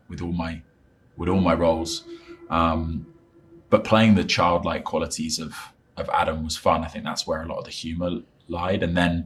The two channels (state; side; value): identical; both; correlation 1.00